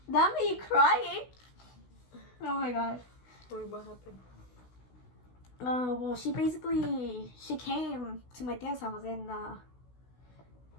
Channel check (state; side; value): late; right; 16 ms